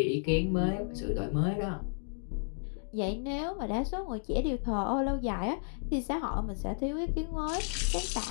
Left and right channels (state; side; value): silent; right; digital silence